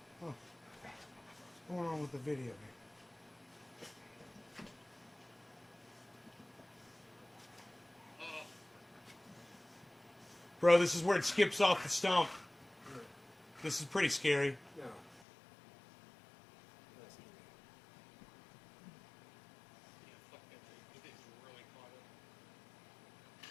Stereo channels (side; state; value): right; drops out; at 15.2 s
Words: What's going on with the video here? Bro, this is where it skips off the stump. This is pretty scary. No. Yeah, fuck that thing. It is really caught up.